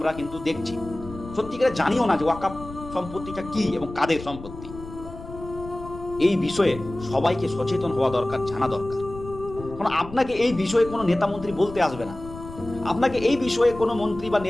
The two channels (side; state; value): left; noise; rumble, 14 dB below the sound